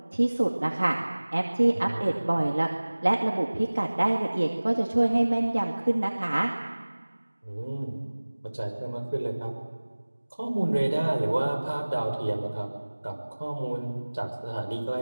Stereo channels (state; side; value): inverted; both; correlation -1.00